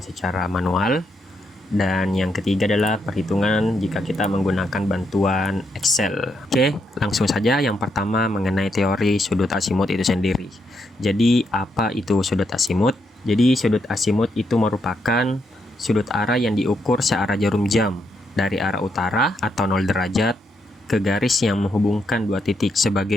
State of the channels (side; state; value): both; normal; correlation 0.79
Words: secara manual. Dan yang ketiga adalah perhitungan jika kita menggunakan bantuan Excel. Oke, langsung saja. Yang pertama, mengenai teori sudut azimut itu sendiri. Jadi, apa itu sudut azimut? Jadi sudut azimut itu merupakan sudut arah yang diukur searah jarum jam dari arah utara atau 0 derajat ke garis yang menghubungkan dua titik.